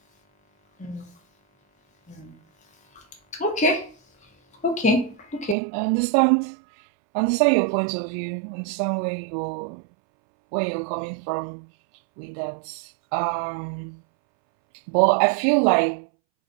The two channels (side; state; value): left; drops out; at 5.6 s